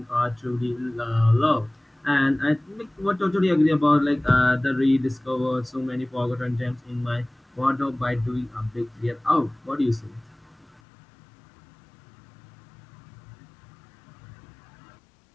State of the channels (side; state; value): right; drops out; at 10.8 s